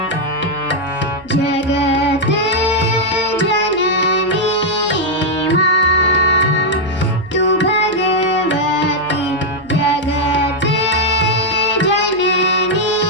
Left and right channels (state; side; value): noise; right; hum, 23 dB below the sound